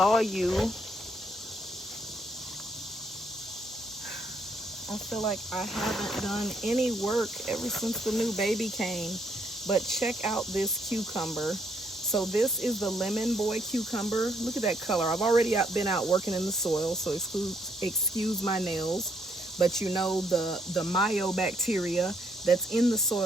you. I feel like I haven't done any work ever since the new baby came. But check out this cucumber. So this is the Lemon Boy cucumber. Look at that color. I've already been out working in the soil, so excuse my nails. But you know the myobacteria that's in the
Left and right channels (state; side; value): normal; both; correlation 0.72